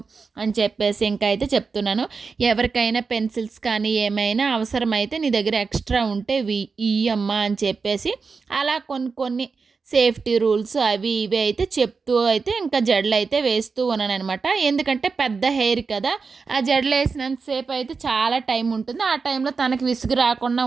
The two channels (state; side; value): quieter; left; 4.9 dB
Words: అని చెప్పేసి ఇంకా అయితే చెప్తున్నాను. ఎవరికైనా పెన్సిల్స్ కానీ ఏమైనా అవసరమైతే నీ దగ్గర ఎక్స్ట్రా ఉంటే ఇయ్యమ్మా అని చెప్పేసి అలా కొన్ని సేఫ్టీ రూల్స్ అవి ఇవి అయితే చెప్తూ అయితే ఇంకా జడలు అయితే వేస్తూ ఉన్నాను అనమాట. ఎందుకంటే పెద్ద హెయిర్ కదా, ఆ జడలు వేసినంతసేపు అయితే చాలా టైం ఉంటుంది. ఆ టైంలో తనకి విసుగు రాకుండా